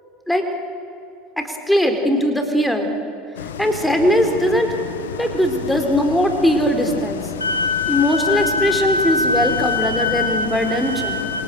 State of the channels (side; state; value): both; normal; correlation 0.44